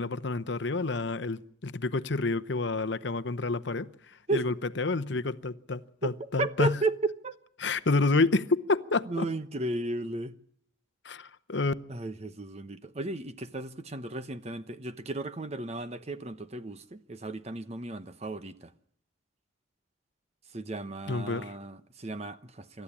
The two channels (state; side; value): normal; both; correlation 0.36